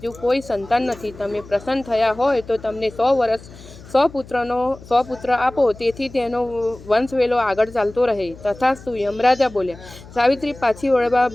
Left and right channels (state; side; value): noise; left; hum, 19 dB below the sound